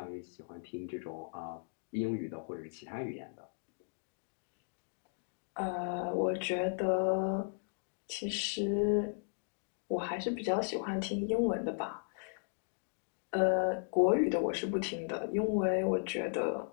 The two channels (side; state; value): right; silent; digital silence